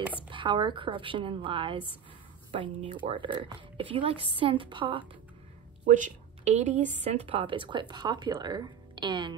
Power, Corruption, and Lies by New Order. If you like synth pop, which 80s synth pop is quite popular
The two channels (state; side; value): quieter; left; 8.2 dB